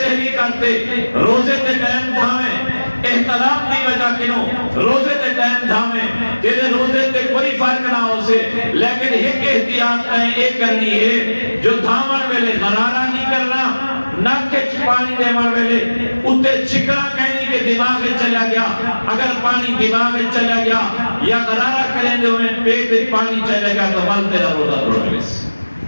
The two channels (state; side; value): inverted; both; correlation -1.00